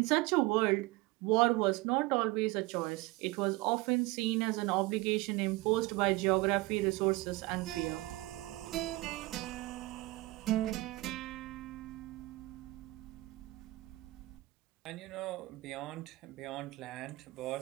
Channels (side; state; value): left; quieter; 20.8 dB